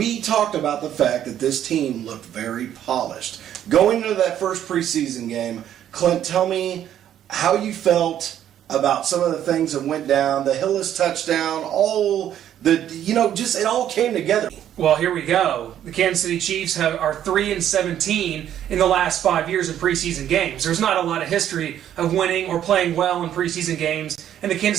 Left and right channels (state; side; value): quieter; left; 10.7 dB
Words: talked about the fact that this team looked very polished. Going into that first preseason game, Clint, tell me how you felt about some of the things that went down, the Hillis touchdown, just it all came together. Well, here we go. The Kansas City Chiefs are 3-17 in the last 5 years in preseason games. There's not a lot of history of winning or playing well in preseason games, and the